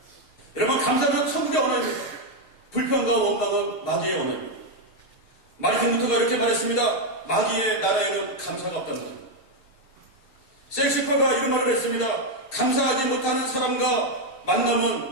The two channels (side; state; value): right; late; 6.4 ms